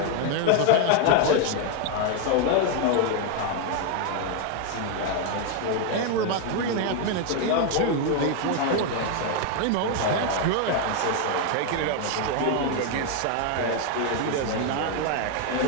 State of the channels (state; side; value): different; both; correlation 0.01